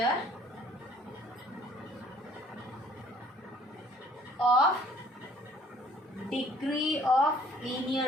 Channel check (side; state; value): both; normal; correlation 0.56